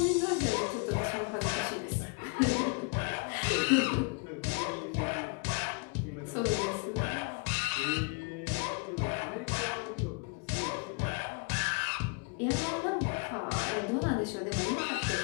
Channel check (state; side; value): quieter; right; 35.2 dB